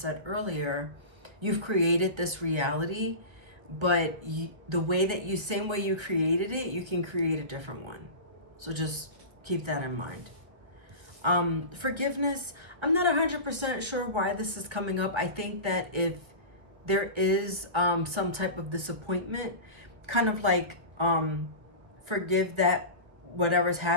earlier, you've created this reality, but same way you created it, you can create a different one. So just keep that in mind. Forgiveness, I'm not 100% sure why this is coming up. I think that if there is some type of disappointment, kind of like forgive that whatever's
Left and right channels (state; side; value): late; left; 1.5 ms